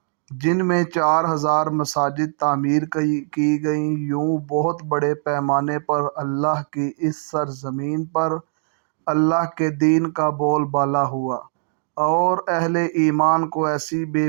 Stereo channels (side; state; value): left; silent; digital silence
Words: جن میں 4,000 مساجد تعمیر کی گئیں۔ یوں بہت بڑے پیمانے پر اللہ کی اس سرزمین پر اللہ کے دین کا بول بالا ہوا، اور اہل ایمان کو ایسی بے